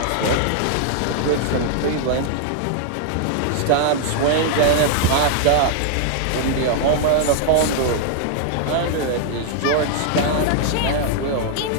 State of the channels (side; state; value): both; different; correlation -0.01